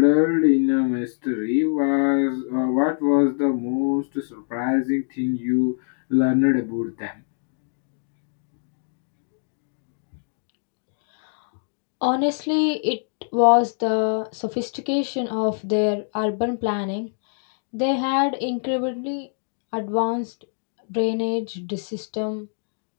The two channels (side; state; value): right; silent; 60 dB below the other